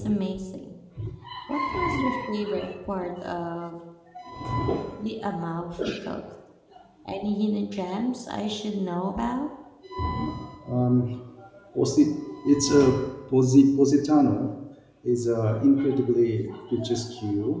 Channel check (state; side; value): identical; both; correlation 1.00